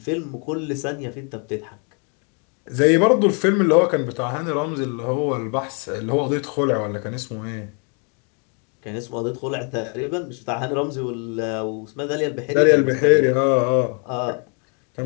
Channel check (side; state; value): right; quieter; 37.9 dB